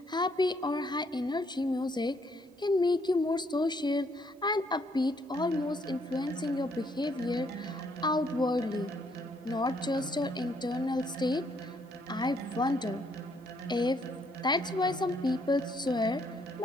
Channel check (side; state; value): both; normal; correlation 0.70